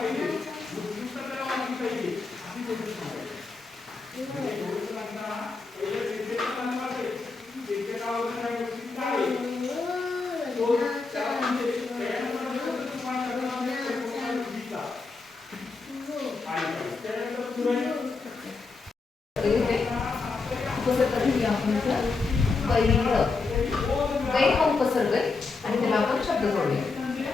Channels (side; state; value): right; quieter; 4.2 dB